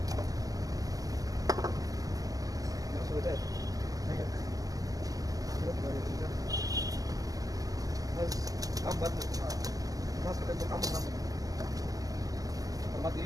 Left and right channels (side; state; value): left; late; 0.17 ms